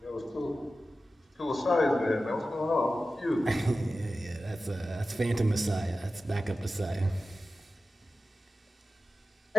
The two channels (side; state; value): both; normal; correlation 0.94